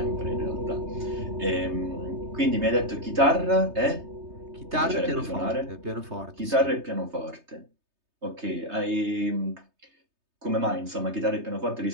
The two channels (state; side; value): late; left; 3.2 ms